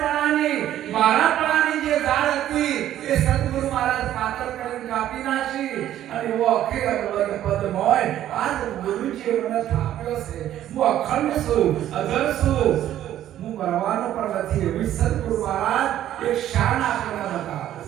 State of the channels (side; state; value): left; quieter; 12.1 dB